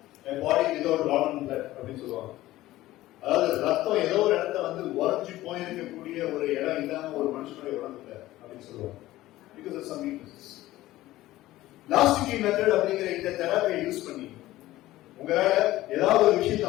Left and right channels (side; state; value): right; quieter; 16.2 dB